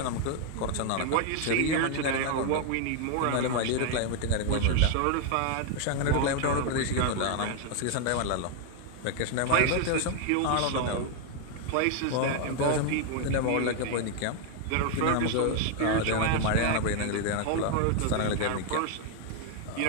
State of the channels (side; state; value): both; different; correlation 0.00